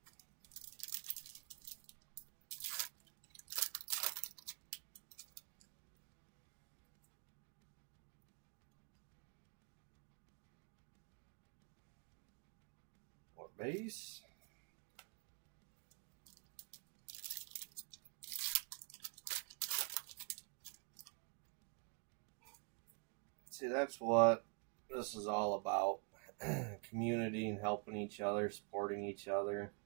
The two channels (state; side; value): quieter; left; 38.5 dB